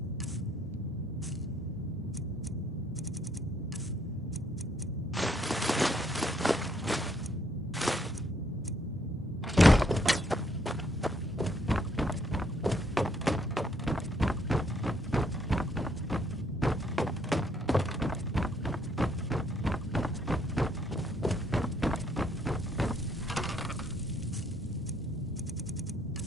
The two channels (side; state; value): both; normal; correlation 0.70